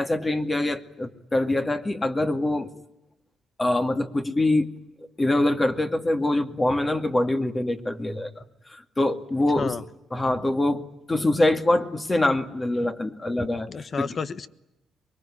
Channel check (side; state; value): both; normal; correlation 0.95